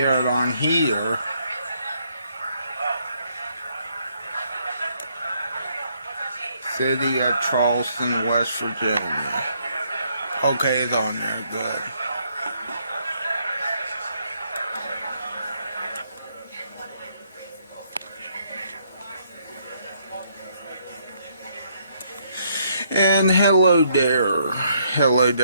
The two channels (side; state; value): both; inverted; correlation -0.71